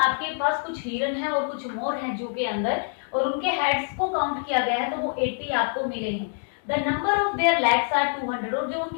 पास कुछ हिरन है और कुछ मोर है जू के अंदर, और उनके हेड्स को काउंट किया गया है तो वो 80 आपको मिले हैं। The number of their legs are 200, और जो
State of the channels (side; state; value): right; silent; 61 dB below the other